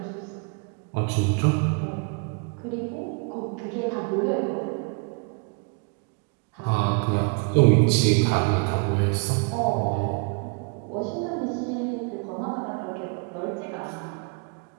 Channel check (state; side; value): quieter; left; 34.3 dB